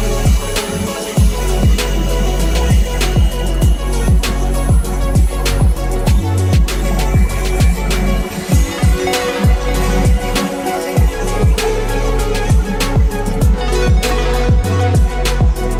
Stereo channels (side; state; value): both; identical; correlation 1.00